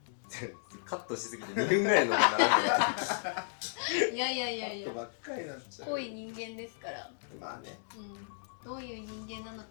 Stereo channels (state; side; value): silent; right; digital silence